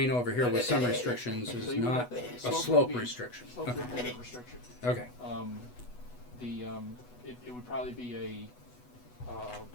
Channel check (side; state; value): right; late; 8.1 ms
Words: over here with some restrictions So is you would not have- a slope slope would be- restriction. Slope would be a restriction. Okay. It would probably be